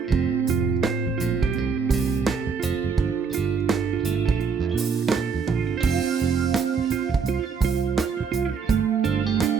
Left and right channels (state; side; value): quieter; left; 5.6 dB